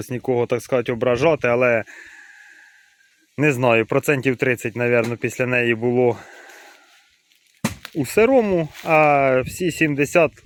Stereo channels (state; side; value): identical; both; correlation 1.00